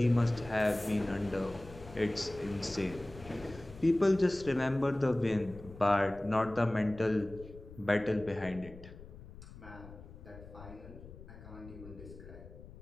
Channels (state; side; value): noise; left; rumble, 16 dB below the sound